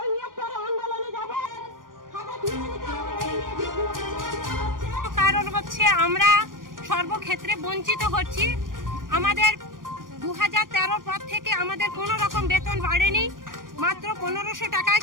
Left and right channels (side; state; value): left; late; 0.90 ms